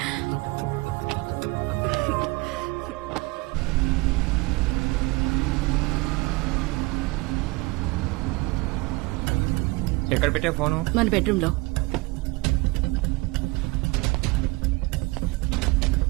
ఎక్కడ పెట్టే ఫోను? మన బెడ్రూమ్ లో.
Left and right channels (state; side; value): quieter; left; 24.0 dB